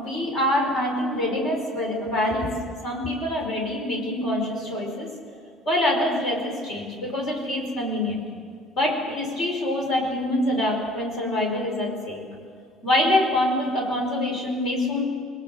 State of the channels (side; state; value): both; normal; correlation 0.50